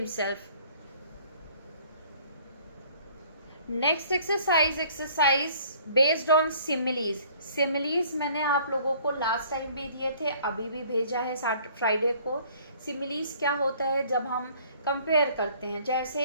Next exercise based on similes. Similes मैंने आप लोगों को last time भी दिए थे, अभी भी भेजा है फ्राइडे को. सिमिलीज क्या होता है, जब हम कंपेयर करते हैं, जैसे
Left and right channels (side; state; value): both; inverted; correlation -0.56